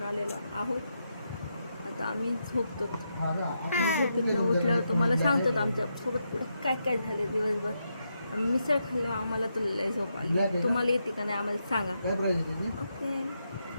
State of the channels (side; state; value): both; inverted; correlation -0.83